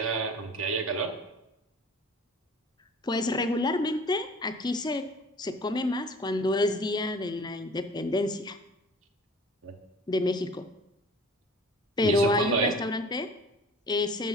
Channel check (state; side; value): normal; both; correlation 0.45